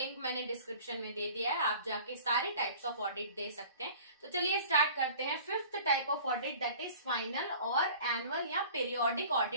मैंने डिस्क्रिप्शन में दे दिया है, आप जाके सारे टाइप्स ऑफ ऑडिट दे सकते हैं। तो चलिए स्टार्ट करते हैं। 5th type of audit, that is final और एनुअल या पीरियोडिक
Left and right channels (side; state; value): both; inverted; correlation -0.46